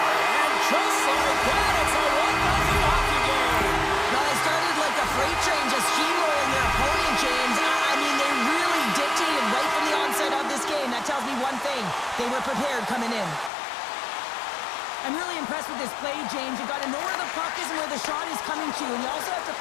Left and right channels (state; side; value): drops out; right; at 13.5 s